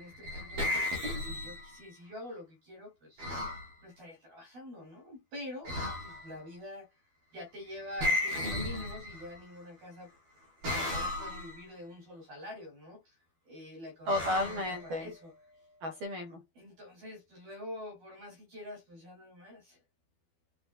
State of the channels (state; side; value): late; left; 12 ms